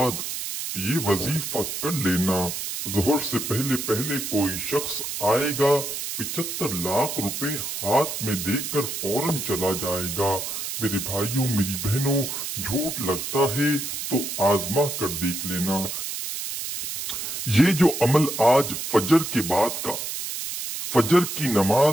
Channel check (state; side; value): noise; right; hiss, 5 dB below the sound